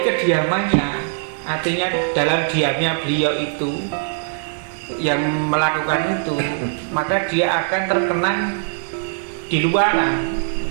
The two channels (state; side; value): silent; left; digital silence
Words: kediamannya, artinya dalam diamnya beliau itu yang melakukan itu, maka dia akan terkenang di luaran